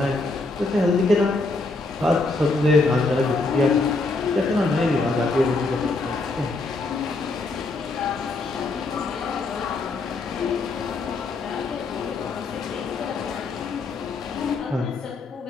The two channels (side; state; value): right; quieter; 3.4 dB